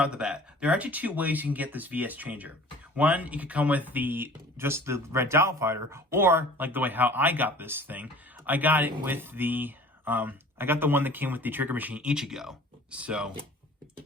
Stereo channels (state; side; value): normal; both; correlation 0.46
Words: off the bat. There are actually two ways you can get this VS changer. One, you could come with just the red dial fighter, or, like the way how I got this thing, I got it with the I got the one that came with the trigger machine Ichigo. So,